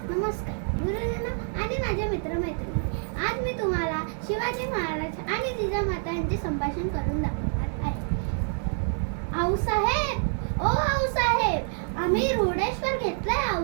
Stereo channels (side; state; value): left; silent; 60 dB below the other